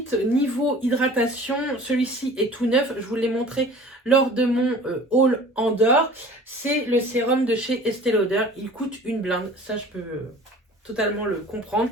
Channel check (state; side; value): normal; both; correlation 0.45